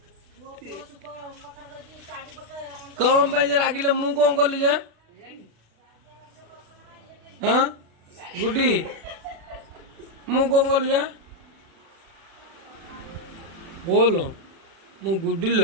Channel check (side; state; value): left; late; 36 ms